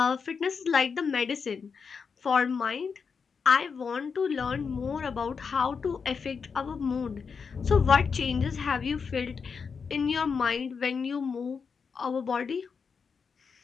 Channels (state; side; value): quieter; right; 5.7 dB